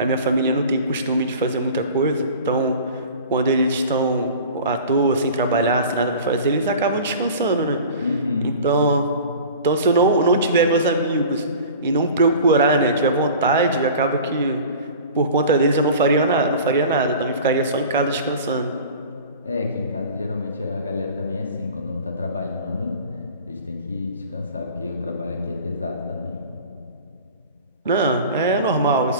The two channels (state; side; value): inverted; both; correlation -0.40